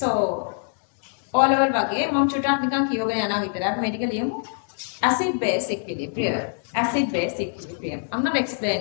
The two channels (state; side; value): silent; right; digital silence